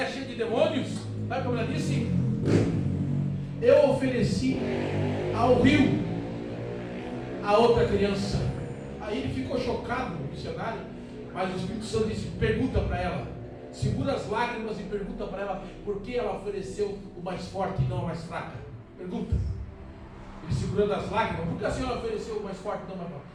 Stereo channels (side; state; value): both; identical; correlation 1.00